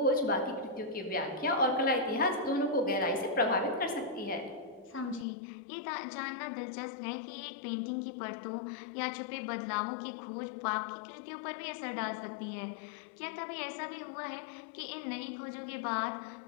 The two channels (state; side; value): drops out; right; at 5.2 s